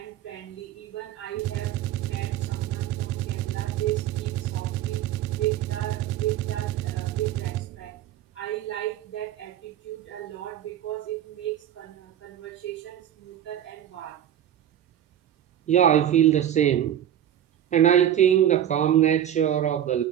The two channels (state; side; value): quieter; left; 10.8 dB